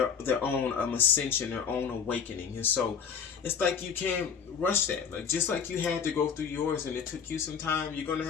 own ascension, their own awakening. And so it's like you can't rush that. Like, just like you had to go through yours and it took you some time, you're going to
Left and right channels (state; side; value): quieter; right; 7.0 dB